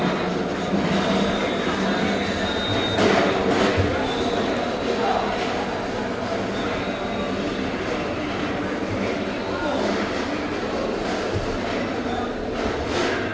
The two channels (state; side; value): identical; both; correlation 1.00